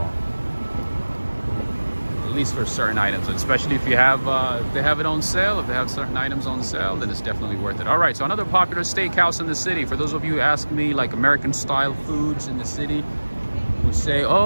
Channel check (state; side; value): inverted; both; correlation -1.00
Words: At least for certain items, and especially if you have if they have it on sale, if they have certain items on sale, then it's definitely worth it. All right, so another popular steakhouse in the city. For those of you who ask me, like American style foods in the city, who say,